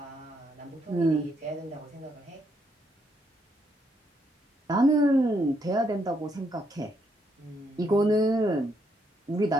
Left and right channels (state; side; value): normal; both; correlation 0.75